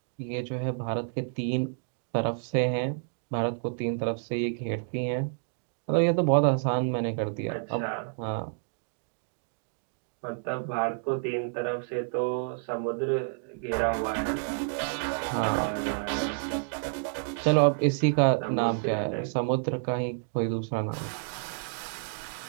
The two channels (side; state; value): left; silent; digital silence